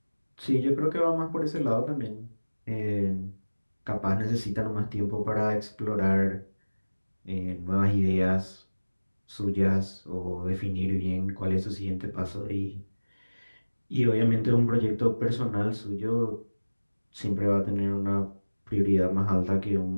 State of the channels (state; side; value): inverted; both; correlation -1.00